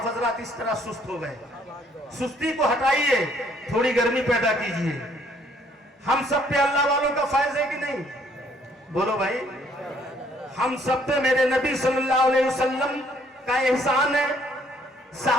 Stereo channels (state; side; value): normal; both; correlation 0.65